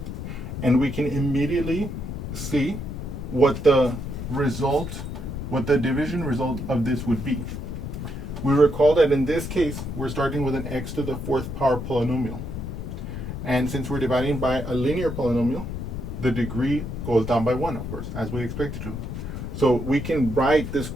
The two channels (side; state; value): left; noise; rumble, 6 dB below the sound